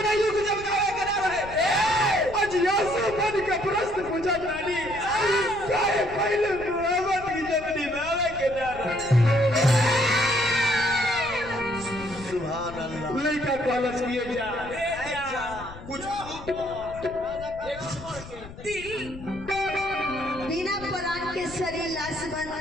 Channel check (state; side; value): noise; left; rumble, 15 dB below the sound